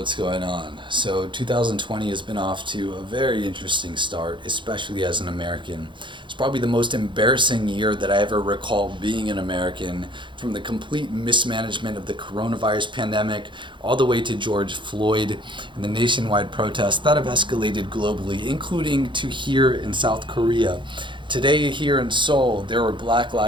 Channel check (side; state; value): left; late; 0.23 ms